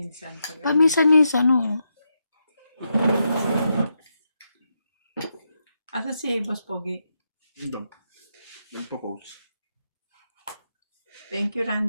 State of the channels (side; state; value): both; inverted; correlation -0.84